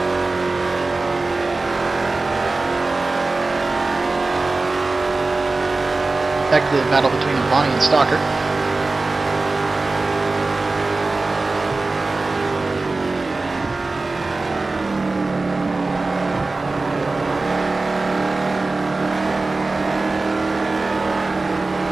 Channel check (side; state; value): left; quieter; 3.4 dB